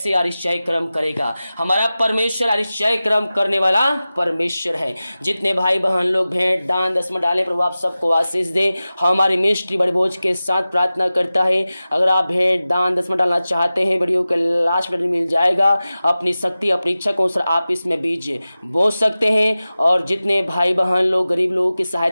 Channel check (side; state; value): both; inverted; correlation -0.96